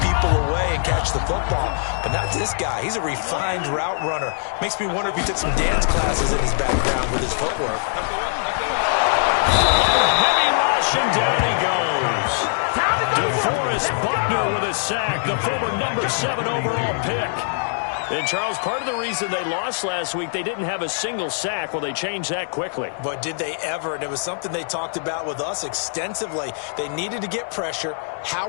away and catch the football. But not this guy. He's a refined route runner. Makes me wonder if he took some dance classes in his background with his footwork. Heavy rush, and down he goes. DeForest Buckner with a sack, the former number 7 overall pick. And, Charles, part of the reason they lost last week, they didn't have a single sack. Well, they changed that quickly. But did they ever? And it was something they talked about with us extensively. They needed to get pressure. How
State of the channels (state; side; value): silent; right; 64 dB below the other